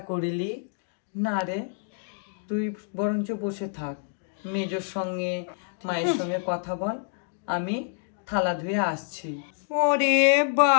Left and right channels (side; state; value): right; silent; digital silence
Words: করিলি। না রে, তুই বরঞ্চ বসে থাক, মেজোর সঙ্গে মায়ের সঙ্গে কথা বল, আমি থালা ধুয়ে আসছি। ওরে